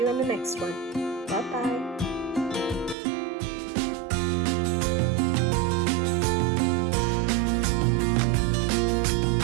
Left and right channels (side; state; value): left; drops out; at 3.0 s